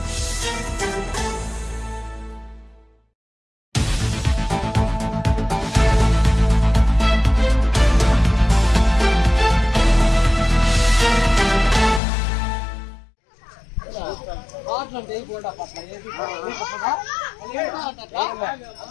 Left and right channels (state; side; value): drops out; right; at 12.0 s